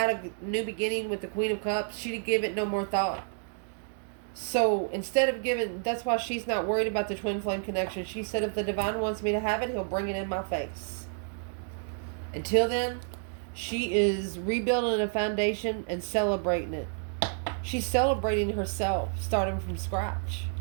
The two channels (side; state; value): left; silent; 58 dB below the other